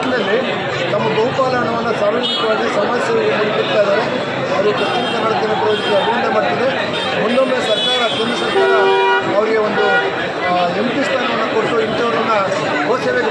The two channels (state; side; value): identical; both; correlation 1.00